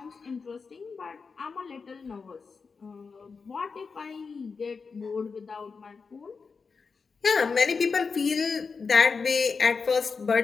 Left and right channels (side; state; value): right; quieter; 5.0 dB